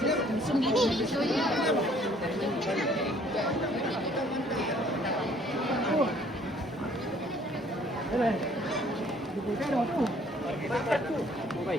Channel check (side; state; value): both; normal; correlation 0.59